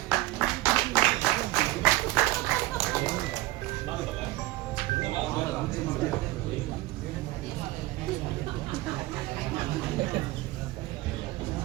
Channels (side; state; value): left; quieter; 18.0 dB